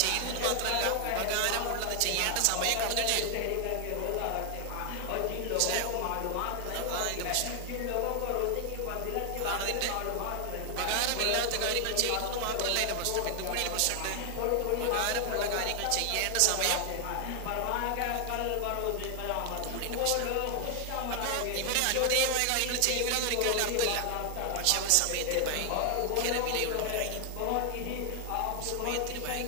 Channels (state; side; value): different; both; correlation 0.00